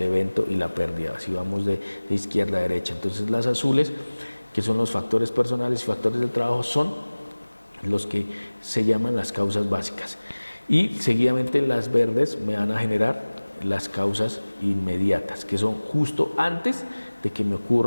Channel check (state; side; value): inverted; both; correlation -1.00